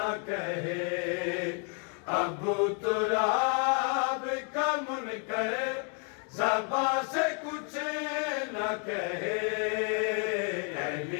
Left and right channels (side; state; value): right; quieter; 38.5 dB